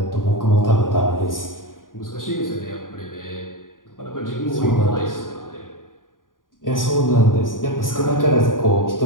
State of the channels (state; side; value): late; right; 0.89 ms